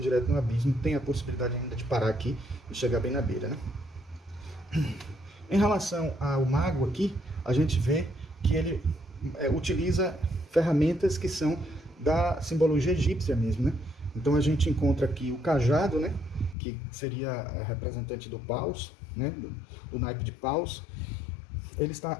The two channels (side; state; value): right; drops out; at 16.6 s